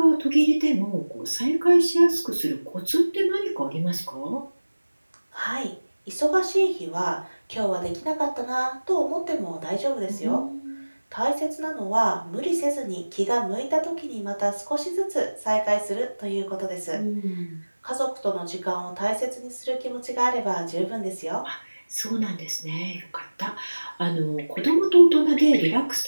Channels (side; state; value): both; inverted; correlation -1.00